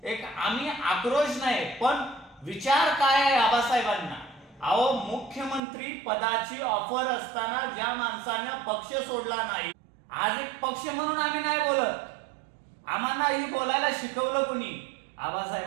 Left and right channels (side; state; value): left; drops out; at 5.6 s